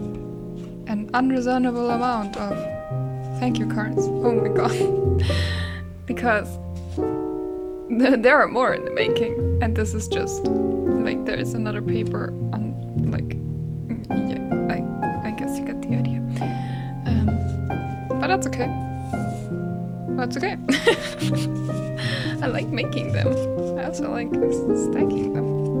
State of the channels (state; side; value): identical; both; correlation 1.00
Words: an unreasonable amount of thank you cards. Oh my god. Because there are more in the making, and this is just like there is another paper on like I guess you get the idea. But that's okay. That's okay. I like making them. I also like stacking them.